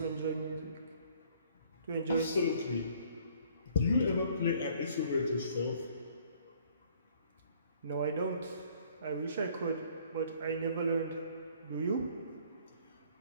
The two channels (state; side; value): inverted; both; correlation -0.59